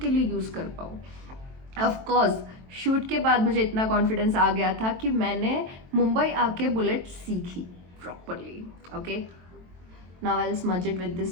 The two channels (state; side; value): late; left; 23 ms